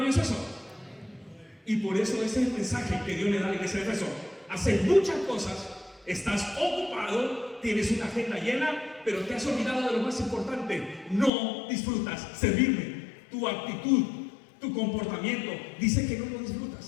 eso? Y por eso ese es el mensaje que Dios le da a la iglesia de Éfeso. Haces muchas cosas, estás ocupado, tienes una agenda llena, pero te has olvidado de lo más importante: no disfrutas servirme. Tu actitud, tu comportamiento dice que no lo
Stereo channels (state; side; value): drops out; right; at 11.3 s